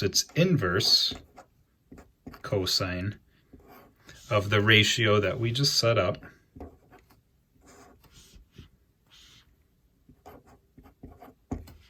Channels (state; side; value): identical; both; correlation 1.00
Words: it's inverse cosine of the ratio that we just set up.